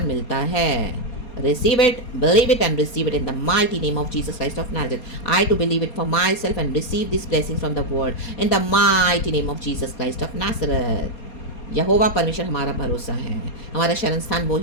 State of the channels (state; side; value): late; right; 4.3 ms